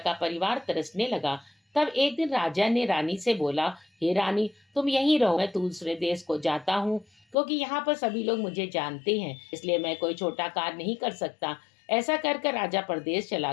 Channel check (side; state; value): right; drops out; at 7.4 s